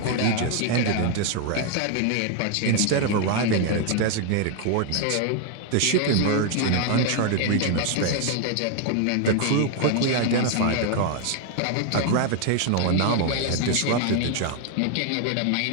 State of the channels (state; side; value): different; both; correlation 0.00